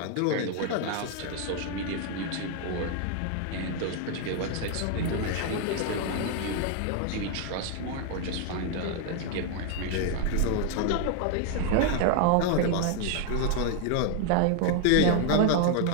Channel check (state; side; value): different; both; correlation 0.01